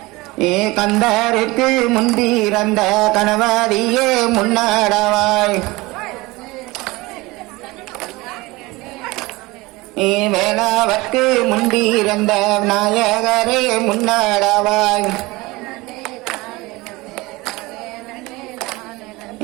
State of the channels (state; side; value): quieter; left; 21.9 dB